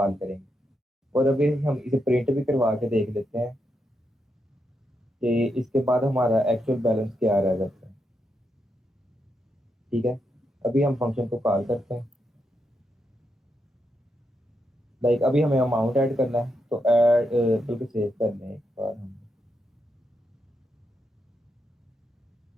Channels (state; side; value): normal; both; correlation 0.83